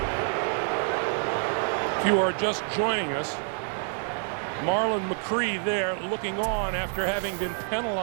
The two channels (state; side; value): silent; left; 57 dB below the other